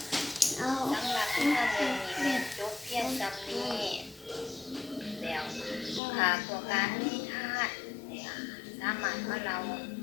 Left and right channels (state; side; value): drops out; right; at 6.0 s